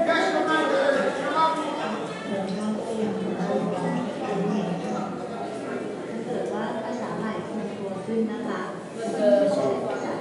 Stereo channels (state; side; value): identical; both; correlation 1.00